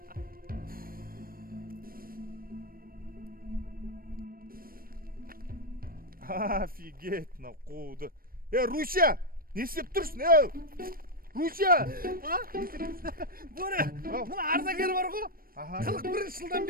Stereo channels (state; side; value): late; left; 0.42 ms